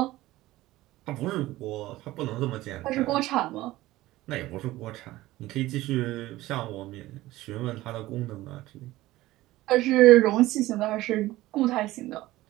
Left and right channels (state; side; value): quieter; left; 17.1 dB